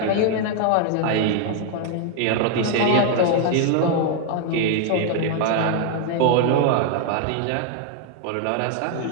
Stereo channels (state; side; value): different; both; correlation 0.00